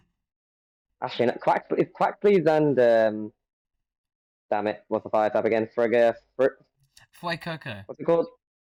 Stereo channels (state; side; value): identical; both; correlation 1.00